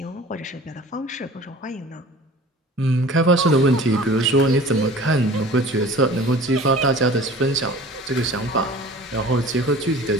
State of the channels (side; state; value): both; normal; correlation 0.43